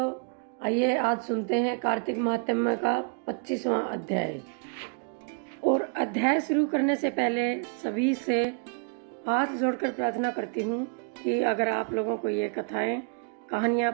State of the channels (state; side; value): quieter; left; 39.5 dB